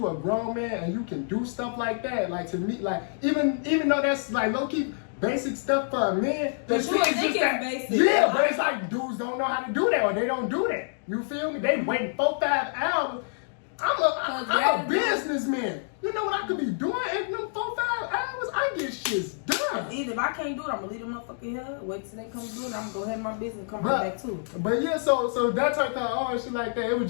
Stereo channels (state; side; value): silent; right; digital silence